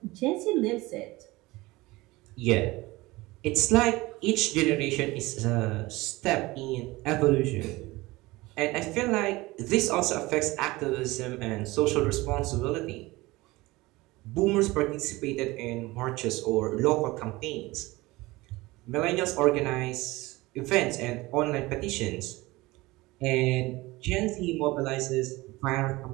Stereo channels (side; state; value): left; quieter; 20.7 dB